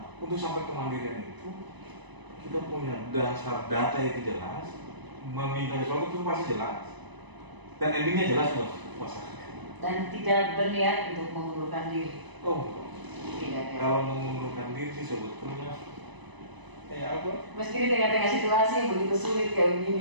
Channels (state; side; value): late; left; 1.0 ms